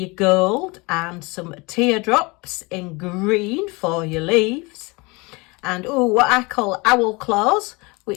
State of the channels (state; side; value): quieter; right; 26.2 dB